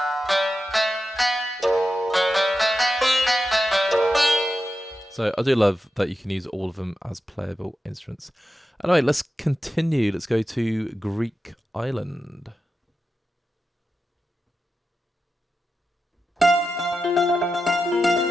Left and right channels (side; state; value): both; normal; correlation 0.90